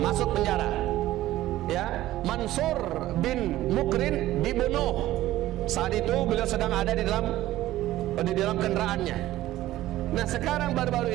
penjara. Ya, Mansur bin Mukrin dibunuh. Saat itu beliau sedang ada di dalam kendaraannya. Nah, sekarang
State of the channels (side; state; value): left; quieter; 15.2 dB